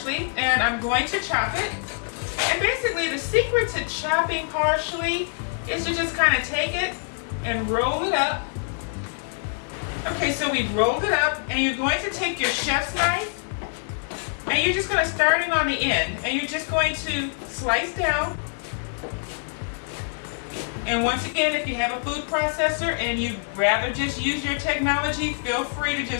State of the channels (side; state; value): right; silent; 62 dB below the other